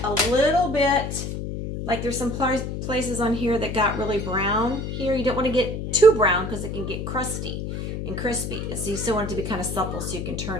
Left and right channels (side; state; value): left; noise; hum, 5 dB below the sound